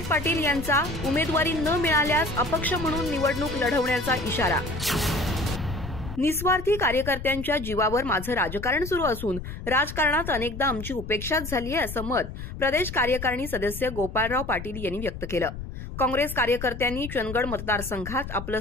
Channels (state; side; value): noise; left; rumble, 9 dB below the sound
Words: पाटील यांचा उमेदवारी न मिळाल्यास अपक्ष म्हणून निवडणूक लढवण्याचा इशारा. निस्वार्थी कार्यकर्त्यांच्या जीवावर माझं राजकारण सुरू असून राजकारणात अनेकदा आमची उपेक्षाच झाली आहे, असं मत प्रदेश कार्यकारिणी सदस्य गोपाळराव पाटील यांनी व्यक्त केलं. काँग्रेस कार्यकर्त्यांनी चंदगड मतदारसंघात आपलं